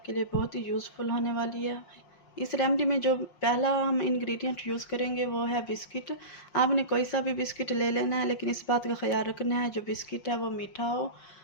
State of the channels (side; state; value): right; late; 5.6 ms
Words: लिए बहुत ही यूज़फुल होने वाली है। इस रेमेडी में जो पहला हम इंग्रेडिएंट यूज़ करेंगे वो है बिस्किट। आपने कोई सा भी बिस्किट ले लेना है, लेकिन इस बात का ख्याल रखना है जो बिस्किट है वो मीठा हो,